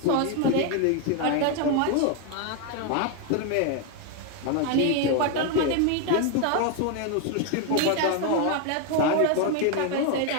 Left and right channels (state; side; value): different; both; correlation 0.01